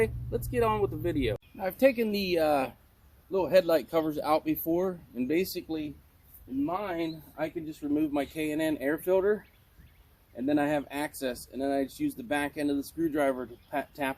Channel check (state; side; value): identical; both; correlation 1.00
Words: let's get on with the video. I've taken the little headlight covers out before, and basically in mine, I can just remove my K&N air filter, and then I have access, and then I just use the back end of the screwdriver to tap